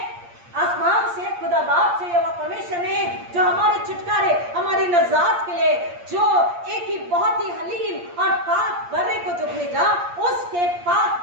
आसमान से, खुदा बाप से, यहोवा परमेश्वर ने जो हमारे छुटकारे, हमारी नजात के लिए जो एक ही बहुत ही हलीम और पाक बर्रे को जो भेजा, उसके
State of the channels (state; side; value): late; left; 8.6 ms